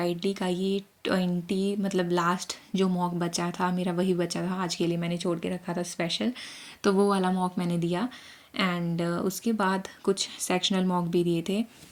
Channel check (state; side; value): identical; both; correlation 1.00